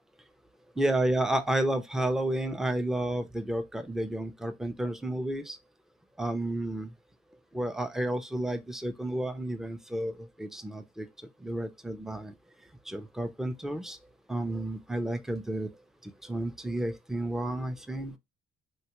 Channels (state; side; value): normal; both; correlation 0.89